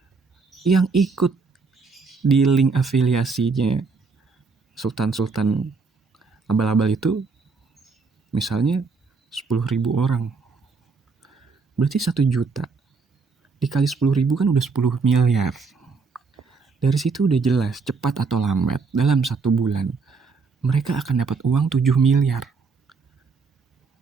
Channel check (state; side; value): quieter; left; 4.6 dB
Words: yang ikut di link afiliasinya sultan abal-abal itu misalnya 10.000 orang, berarti 1 juta dikali 10.000 kan udah 10 miliar. Dari situ udah jelas cepat atau lambat dalam 1 bulan mereka akan dapat uang 7 miliar